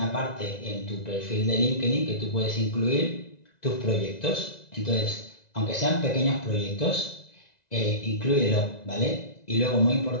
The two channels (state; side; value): late; right; 1.9 ms